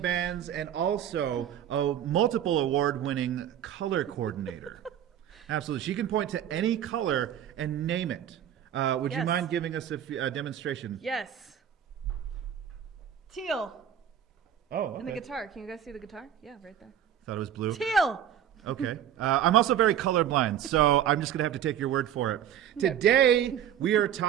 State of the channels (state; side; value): quieter; left; 10.0 dB